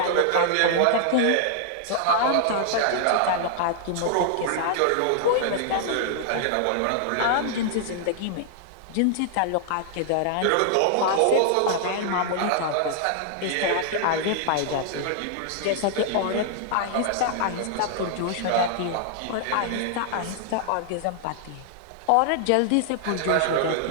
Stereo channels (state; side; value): different; both; correlation -0.01